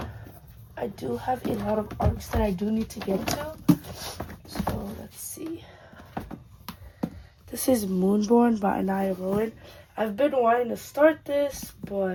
I do have a lot of ARCs that I do need to get to. So let's see. This is Moonborn by Anaya Rowan. I've been wanting to start this,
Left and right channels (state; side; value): identical; both; correlation 1.00